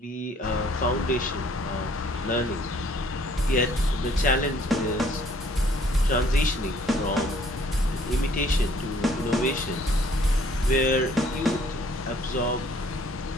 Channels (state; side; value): normal; both; correlation 0.60